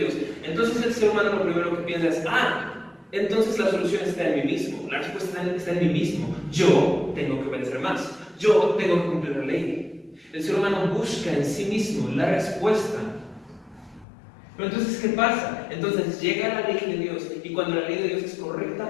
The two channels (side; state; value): right; drops out; at 14.1 s